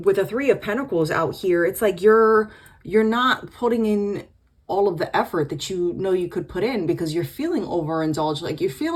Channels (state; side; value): identical; both; correlation 1.00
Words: the Three of Pentacles out here, it's like you're not putting in all of the effort that you know you could put in, because you're feeling overindulged. Like you're